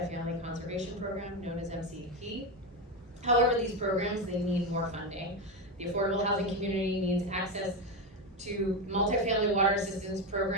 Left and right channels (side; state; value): both; normal; correlation 0.13